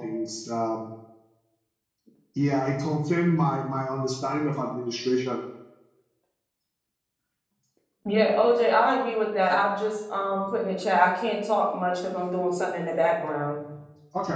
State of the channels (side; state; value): both; identical; correlation 1.00